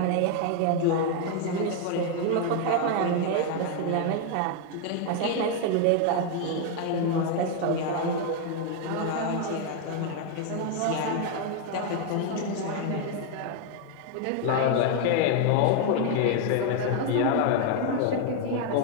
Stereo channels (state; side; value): different; both; correlation 0.01